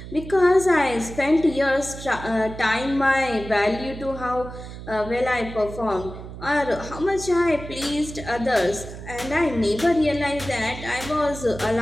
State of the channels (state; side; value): noise; right; hum, 12 dB below the sound